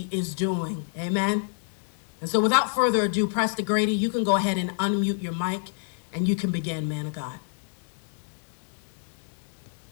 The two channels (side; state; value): right; silent; digital silence